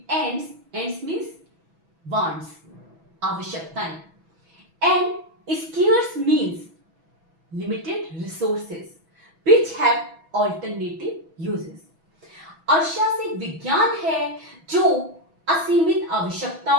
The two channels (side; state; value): left; late; 6.1 ms